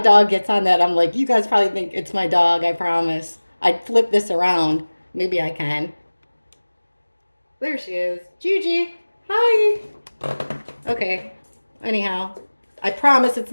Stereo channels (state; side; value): inverted; both; correlation -1.00